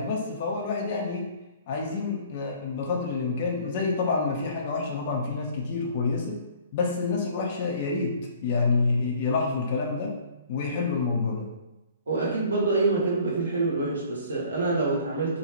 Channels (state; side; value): inverted; both; correlation -0.53